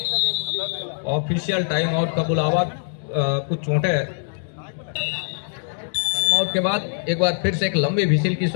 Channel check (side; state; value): right; silent; digital silence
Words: ऑफिशियल टाइम आउट का बुलावा, कुछ चोटें आउट के बाद एक बार फिर से एक लंबी विसिल की